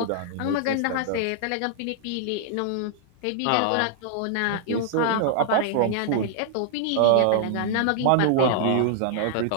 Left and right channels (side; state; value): both; different; correlation -0.01